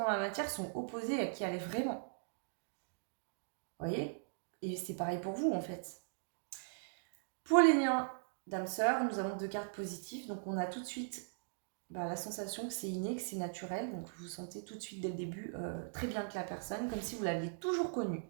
dans la matière sont opposés à qui elle est vraiment. Vous voyez? Et c'est pareil pour vous en fait. Pour les liens d'âme-sœur, nous avons deux cartes positives. Donc on a tout de suite la sensation que c'est inné, que c'est naturel. Donc vous sentez tout de suite dès le début très bien que la personne, comme si vous l'aviez toujours connue.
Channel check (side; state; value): left; silent; digital silence